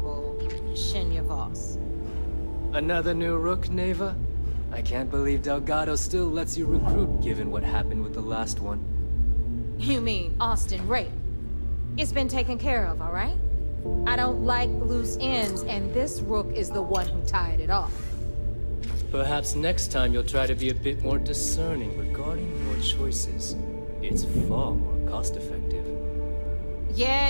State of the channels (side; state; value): both; inverted; correlation -1.00